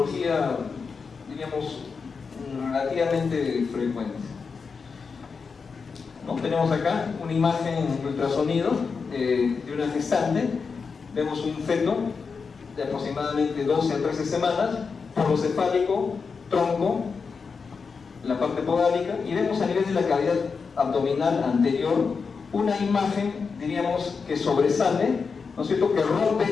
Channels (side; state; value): right; quieter; 5.2 dB